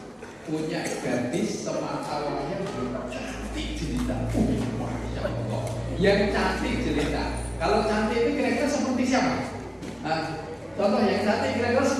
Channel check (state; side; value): identical; both; correlation 1.00